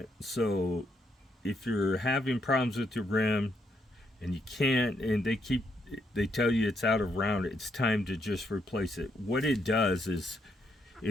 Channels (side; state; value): both; normal; correlation 0.76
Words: So if you're having problems with your rim and you can't, and they tell you it's out of round, it's time to just replace it. What it does is